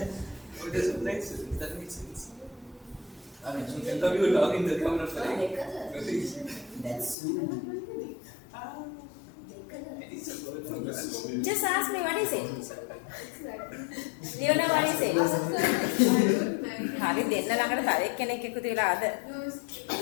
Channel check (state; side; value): drops out; right; at 7.2 s